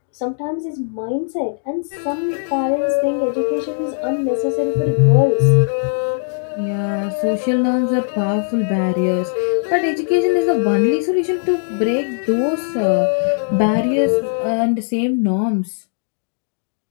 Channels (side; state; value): right; silent; digital silence